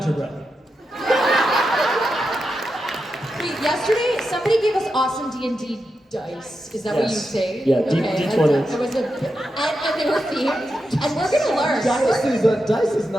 Wait, yesterday somebody gave us awesome D&D dice. Is that what you Yes. say? Yeah, okay. D20s. It was and they were themed, and we're gonna learn. Dice is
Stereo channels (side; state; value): both; normal; correlation 0.88